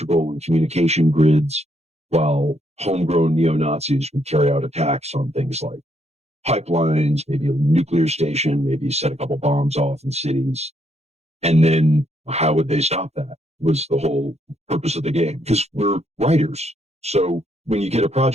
and communication grids, while homegrown neo-Nazis would carry out attacks on things like pipelines, maybe a nuclear station, maybe set a couple bombs off in cities. And then how would they stop that was the whole purpose of the game, because we're writers. So when you get a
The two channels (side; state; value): left; late; 0.31 ms